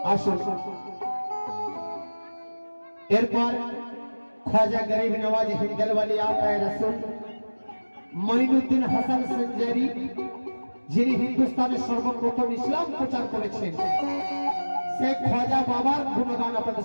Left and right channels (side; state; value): both; inverted; correlation -1.00